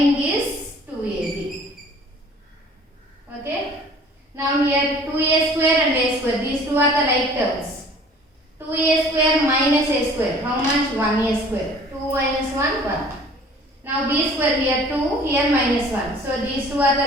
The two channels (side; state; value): both; normal; correlation 0.50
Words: is 2ab. Okay. Now here 2a square and a square. These two are the like terms. 2a square minus a square. How much? 1a square. 2 minus 1, 1. Now b square here 2, here minus 1. So these two are the